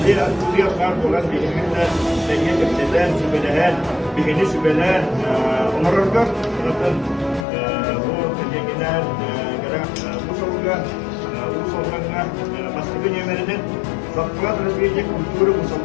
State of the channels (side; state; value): right; drops out; at 7.5 s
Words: Bihini sübeler, onarırlar. Zaten bu tegeler, bu soruga, bu sorunlarına baskı dönemlerinin Zaklat Resmiye Kulturu